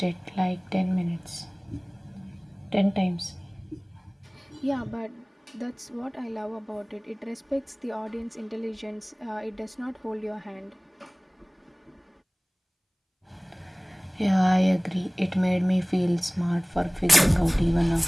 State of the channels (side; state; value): both; identical; correlation 1.00